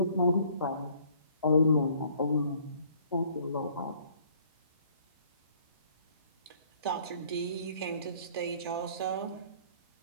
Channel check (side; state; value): both; inverted; correlation -0.58